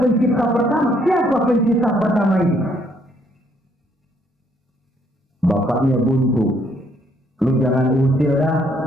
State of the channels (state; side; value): normal; both; correlation 0.68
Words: pencipta pertama. Siapa pencipta pertama ini? Bapaknya buntu. Lu jangan usil dah.